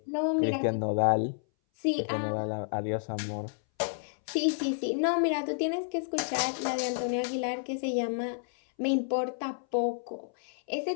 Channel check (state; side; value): silent; right; 58 dB below the other